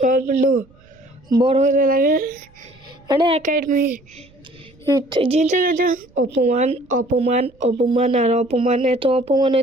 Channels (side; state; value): right; noise; rumble, 29 dB below the sound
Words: বড় হতে লাগে, মানে একাডেমি জিনতে গেছে, অপমান অপমান অপমান আর অপমান, এত অপমান